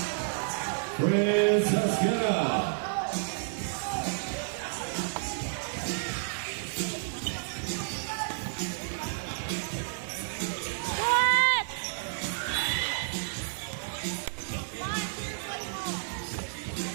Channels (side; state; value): left; silent; 57 dB below the other